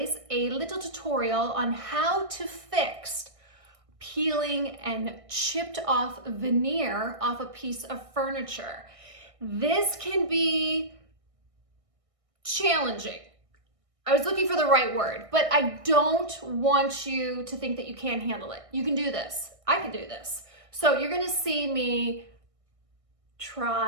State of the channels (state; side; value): late; left; 1.6 ms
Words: a little tutorial on how to fix peeling and chipped off veneer off a piece of furniture. This can be challenging. I was looking for the right word, but I don't want you to think that you can't handle it. You can do this. I can do this. So you're gonna see me